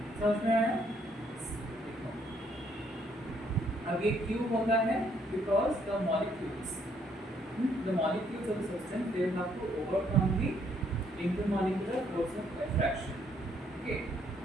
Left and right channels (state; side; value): normal; both; correlation 0.69